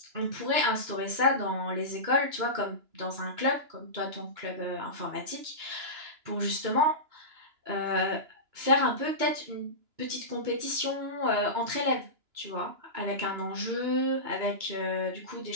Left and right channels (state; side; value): late; left; 2.9 ms